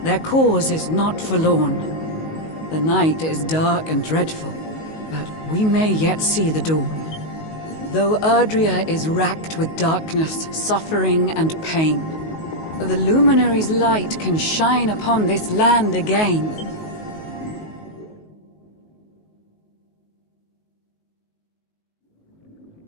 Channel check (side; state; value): right; late; 19 ms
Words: Their cause is not forlorn. The night is dark and dreadful, but we may yet see the dawn. Though Erdrea is racked with darkness, suffering, and pain, the Luminary's light can shine upon this land again.